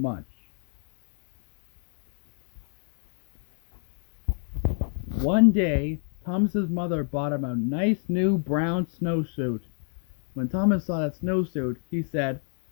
One day, Thomas's mother bought him a nice new brown snowsuit. When Thomas saw that snowsuit, he said,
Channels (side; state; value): right; silent; 59 dB below the other